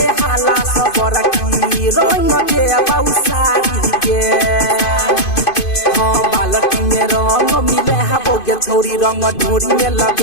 हाला सबर की रंग के बौसारी के हाँ बालटी में रंग मिले हा बोगे छोरी रंग ढोरी में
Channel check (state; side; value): late; right; 2.5 ms